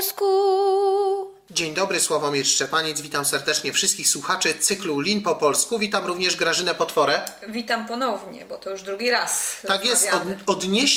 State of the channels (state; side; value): identical; both; correlation 1.00